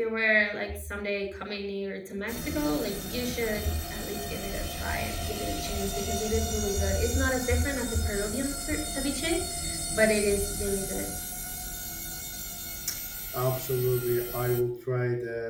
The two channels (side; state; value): both; identical; correlation 1.00